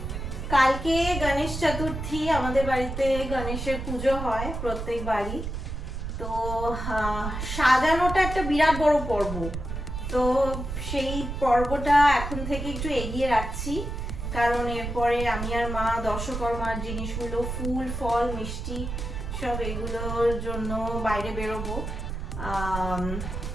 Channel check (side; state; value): right; noise; rumble, 5 dB below the sound